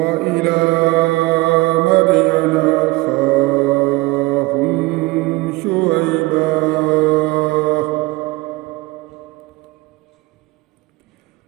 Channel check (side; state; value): left; quieter; 22.0 dB